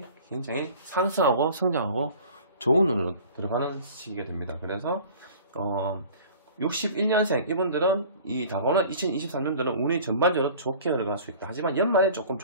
굉장히 상승하고 성장하고 좋은 운으로 들어가는 시기가 됩니다. 그래서 61년생 이분들은 이 다가오는 2023년도는 운이 전반적으로 좋게 흘러갈 수 있다. 하지만 연말에 조금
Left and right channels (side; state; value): both; inverted; correlation -0.45